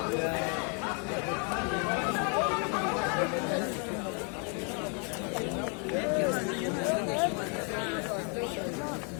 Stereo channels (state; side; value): quieter; right; 38.2 dB